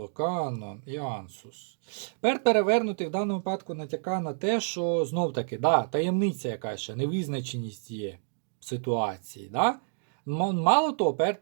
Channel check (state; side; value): silent; left; digital silence